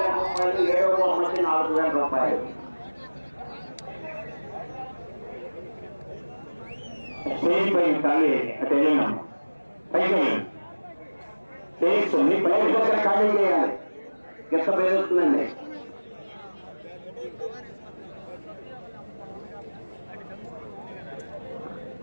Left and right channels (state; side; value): inverted; both; correlation -1.00